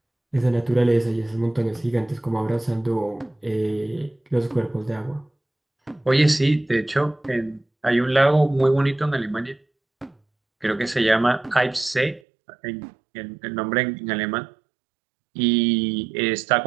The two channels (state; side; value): drops out; left; at 12.2 s